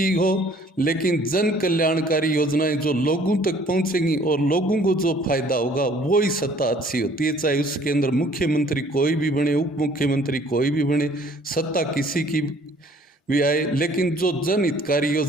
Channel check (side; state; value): both; normal; correlation 0.57